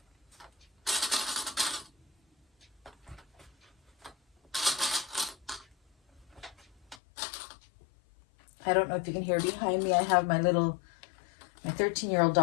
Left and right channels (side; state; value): right; drops out; at 7.0 s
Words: I don't know if you can hear behind me. I have my 13-year-old